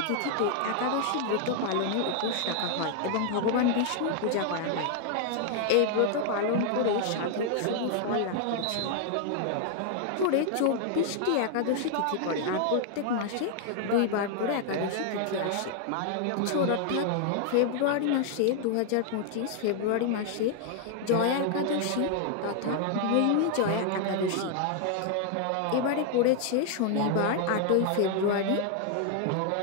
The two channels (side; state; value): both; different; correlation 0.00